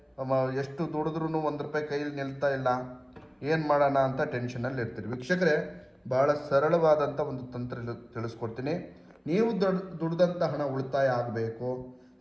ಎಷ್ಟು ದುಡಿದ್ರೂ ₹1 ಕೈಯಲ್ಲಿ ನಿಲ್ತಾ ಇಲ್ಲ. ಏನು ಮಾಡೋಣ ಅಂತ ಟೆನ್ಷನಲ್ಲಿ ಇರ್ತೀರಿ. ವೀಕ್ಷಕರೇ, ಭಾಳ ಸರಳವಾದಂಥ ಒಂದು ತಂತ್ರ ತಿಳಿಸ್ಕೊಡ್ತೀನಿ. ನೀವು ದುಡ್ದಂಥ ಹಣ ಉಳಿತಾಯ ಆಗಬೇಕು,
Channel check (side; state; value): both; identical; correlation 1.00